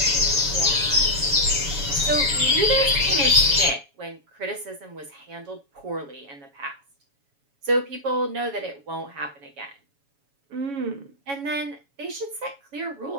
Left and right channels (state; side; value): late; left; 7.2 ms